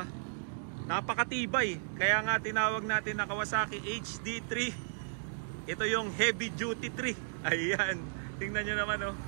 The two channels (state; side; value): silent; left; digital silence